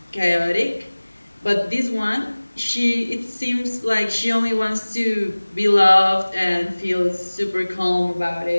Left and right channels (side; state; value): both; inverted; correlation -1.00